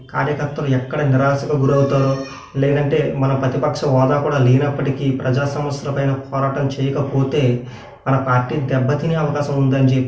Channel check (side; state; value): both; identical; correlation 1.00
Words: కార్యకర్తలు ఎక్కడ నిరాశకు గురవుతారో, లేదంటే మన ప్రతిపక్ష హోదా కూడా లేనప్పటికీ ప్రజా సమస్యలపైన పోరాటం చేయకపోతే మన పార్టీ దెబ్బతినే అవకాశం ఉందని